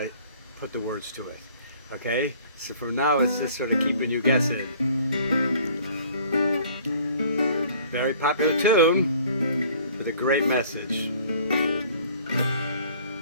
put the words to it. Okay? So for now, it's just sort of keeping you guessing. Very popular tune with a great message.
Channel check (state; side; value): inverted; both; correlation -0.53